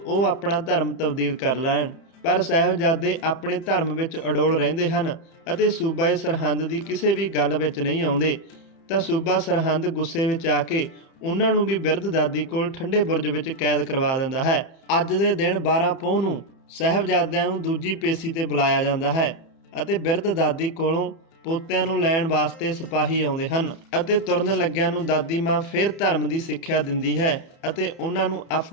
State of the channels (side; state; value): right; late; 30 ms